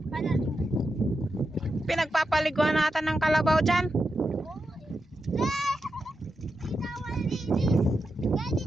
Pinagpapaliguan natin ng kalabaw dyan.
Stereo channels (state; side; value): normal; both; correlation 0.88